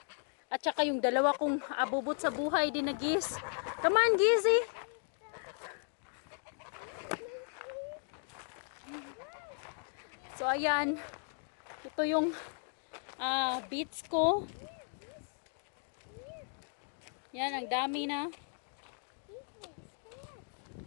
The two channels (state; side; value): silent; right; 54 dB below the other